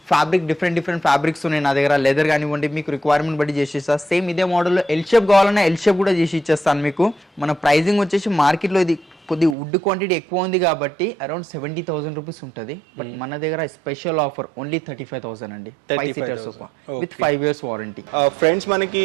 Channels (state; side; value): drops out; left; at 9.6 s